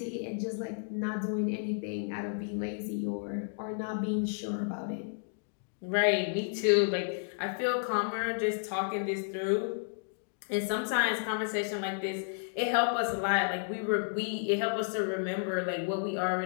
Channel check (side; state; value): right; silent; digital silence